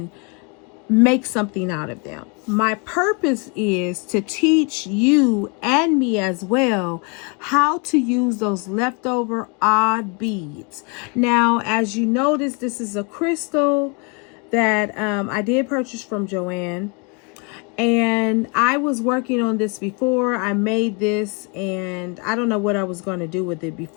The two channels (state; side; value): quieter; right; 33.5 dB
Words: make something out of them. My purpose is to teach you and me as well how to use those leftover odd beads. Now, as you notice, this is a crystal that I did purchase from Joann. And I was working on this before. I made this and I don't know what I was going to do with it